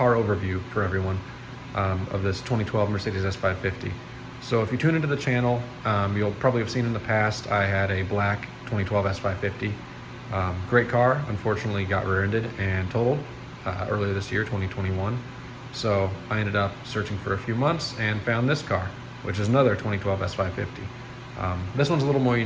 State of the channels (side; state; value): both; identical; correlation 1.00